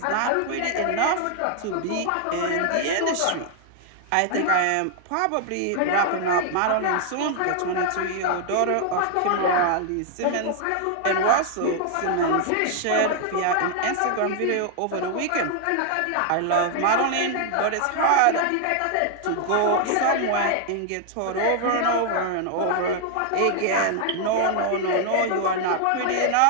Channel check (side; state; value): both; different; correlation 0.00